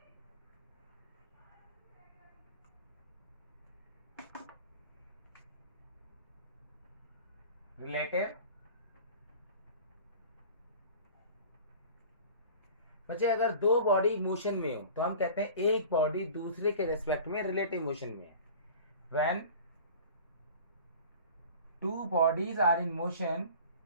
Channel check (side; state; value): both; inverted; correlation -0.41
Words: Relative बच्चे अगर दो बॉडी मोशन में हो तो हम कहते हैं एक बॉडी दूसरे के रेस्पेक्ट में रिलेटिव मोशन में है. When two bodies are in motion,